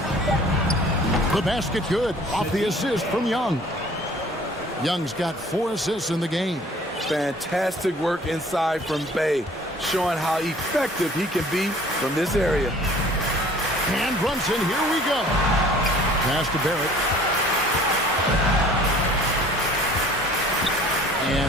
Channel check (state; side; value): normal; both; correlation 0.51